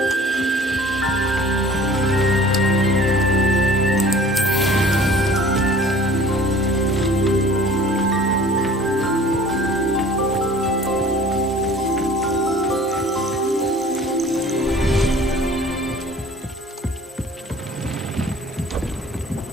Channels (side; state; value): both; normal; correlation 0.47